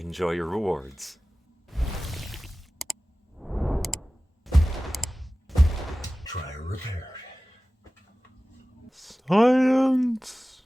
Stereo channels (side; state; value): both; normal; correlation 0.97